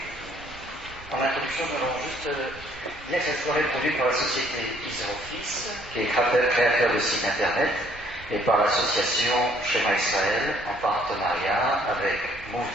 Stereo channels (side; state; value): right; noise; rumble, 21 dB below the sound